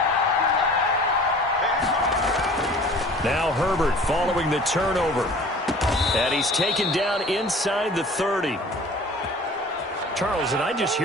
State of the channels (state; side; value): normal; both; correlation 0.46